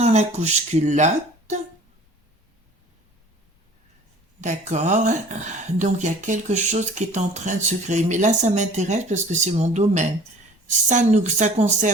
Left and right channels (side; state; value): both; normal; correlation 0.47